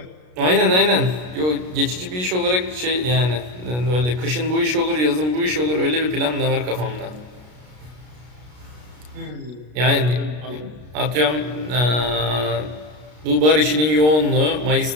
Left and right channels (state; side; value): late; left; 33 ms